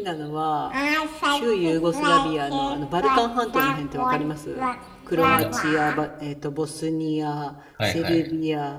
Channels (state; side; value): identical; both; correlation 1.00